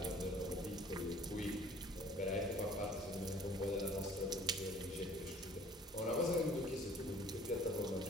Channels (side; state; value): both; normal; correlation 0.51